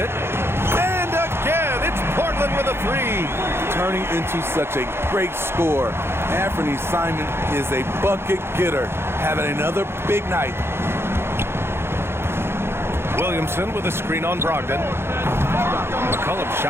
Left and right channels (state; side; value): late; left; 0.12 ms